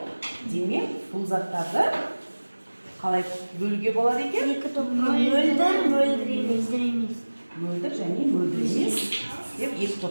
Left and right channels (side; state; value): both; inverted; correlation -1.00